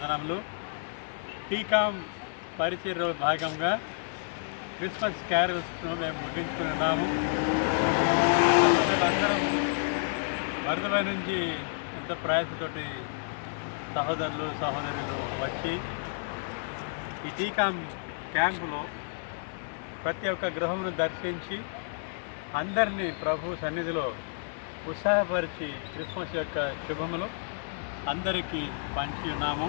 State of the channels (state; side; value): silent; right; 58 dB below the other